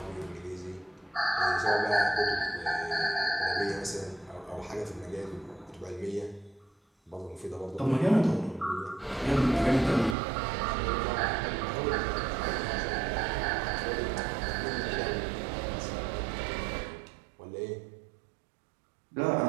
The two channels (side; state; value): left; drops out; at 10.2 s